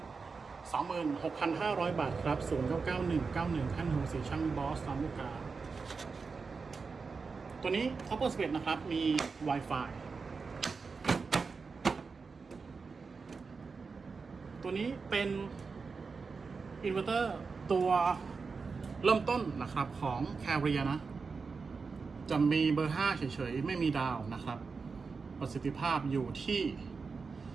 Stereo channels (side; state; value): left; quieter; 4.8 dB